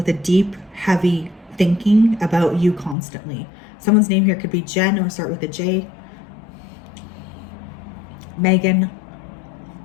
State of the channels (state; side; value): drops out; right; at 3.0 s